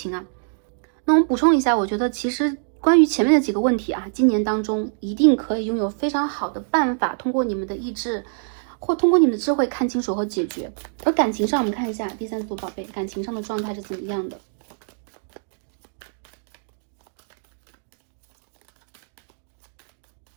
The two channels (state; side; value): silent; left; digital silence